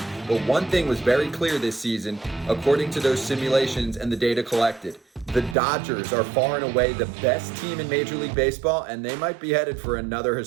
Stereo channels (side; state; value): left; drops out; at 5.6 s